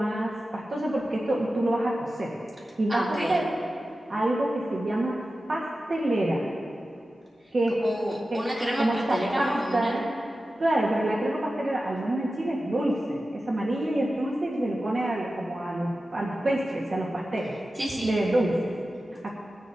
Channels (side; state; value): both; normal; correlation 0.93